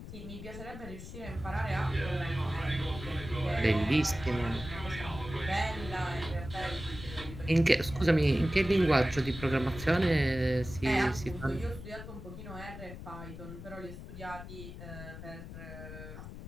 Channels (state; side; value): noise; left; rumble, 12 dB below the sound